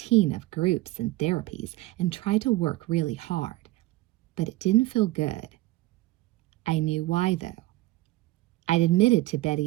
of groups and therapies and tried to work really hard, but it didn't feel good. I knew why, though. I'd admitted to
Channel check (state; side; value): quieter; left; 18.1 dB